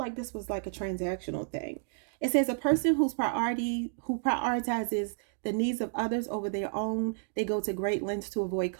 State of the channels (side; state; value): left; silent; digital silence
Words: this was like a transactional thing. It says a person who prioritizes the needs of others over their own. They go to great lengths to avoid